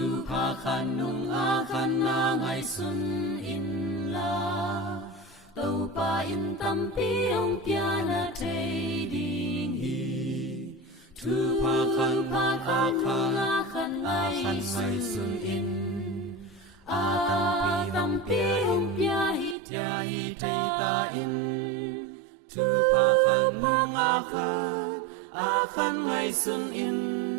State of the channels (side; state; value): left; drops out; at 19.6 s